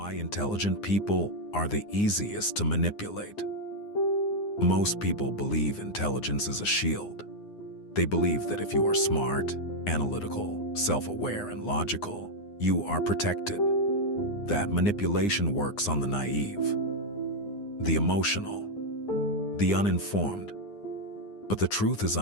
intelligent people are the easiest to manipulate. Most people believe intelligence is a shield. They believe that if you are smart, analytical, self-aware, and logical, you are protected. That manipulation works on the naive, the emotional, the uninformed. But the truth is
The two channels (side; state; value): right; late; 9.7 ms